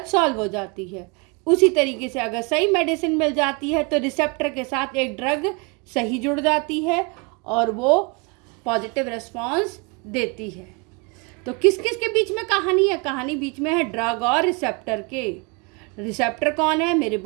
सॉल्व हो जाती है। उसी तरीके से अगर सही मेडिसिन मिल जाती है तो रिसेप्टर के साथ एक ड्रग सही जुड़ जाती है और वो पॉजिटिव रिस्पॉन्स देती है। तो किस किस के बीच में कहानी है, कहानी बीच में है ड्रग और रिसेप्टर के। रिसेप्टर कौन है, मेरे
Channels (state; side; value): quieter; left; 30.9 dB